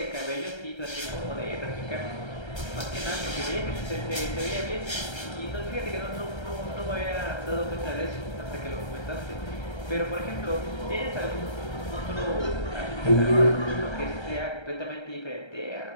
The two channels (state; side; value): late; right; 1.3 ms